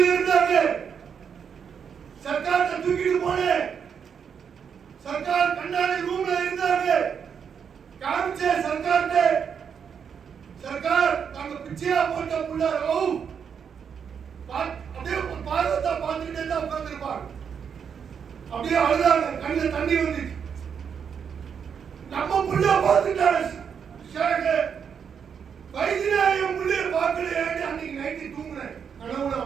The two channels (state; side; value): quieter; left; 7.1 dB